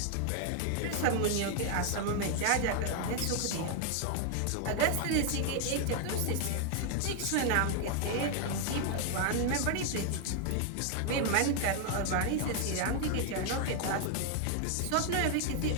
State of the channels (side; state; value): both; different; correlation 0.00